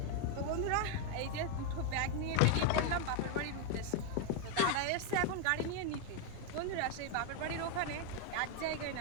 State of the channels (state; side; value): different; both; correlation 0.01